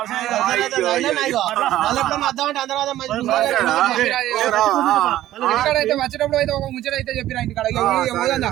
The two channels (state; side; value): quieter; left; 13.8 dB